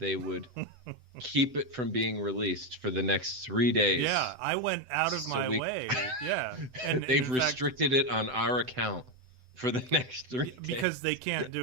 would keep it from being released for the next 3 days. Yeah, I went out of my way. Yeah, and they've restricted it on our account for the next 3 days. Because they can't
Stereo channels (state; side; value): late; left; 7.9 ms